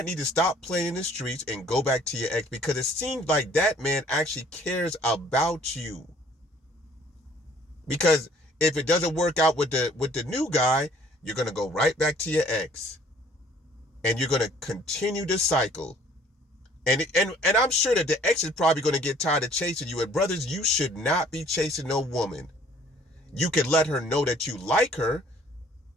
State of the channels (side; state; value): both; normal; correlation 0.57